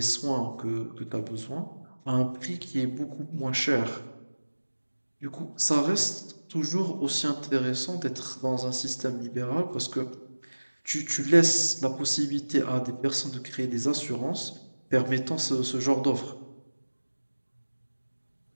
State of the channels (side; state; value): both; inverted; correlation -1.00